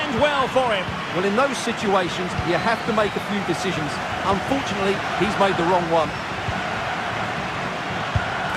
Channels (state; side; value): identical; both; correlation 1.00